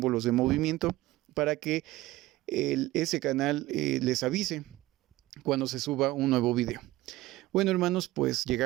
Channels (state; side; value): quieter; left; 17.5 dB